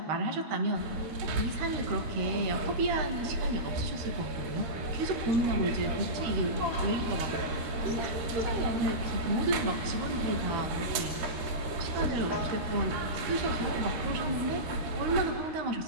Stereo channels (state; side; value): late; left; 13 ms